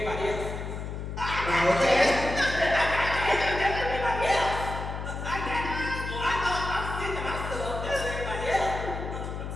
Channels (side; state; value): left; noise; hum, 6 dB below the sound